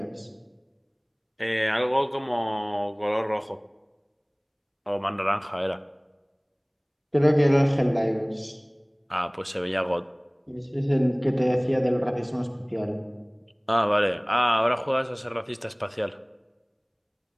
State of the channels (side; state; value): both; identical; correlation 1.00